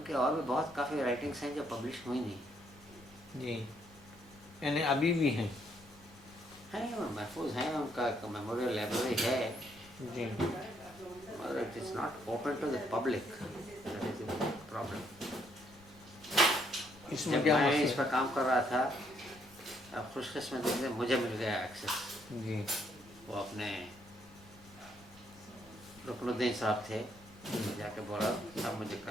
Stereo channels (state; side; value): noise; left; rumble, 24 dB below the sound